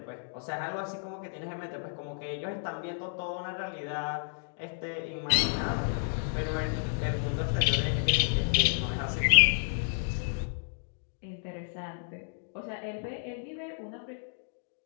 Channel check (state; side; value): silent; right; digital silence